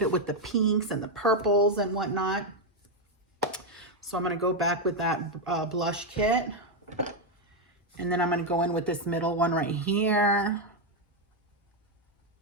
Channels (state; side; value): normal; both; correlation 0.03